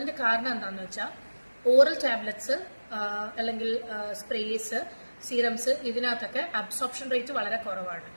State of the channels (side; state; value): both; inverted; correlation -1.00